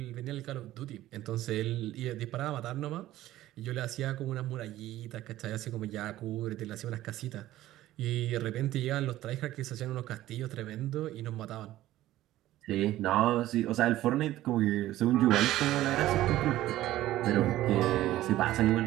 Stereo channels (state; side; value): quieter; left; 14.8 dB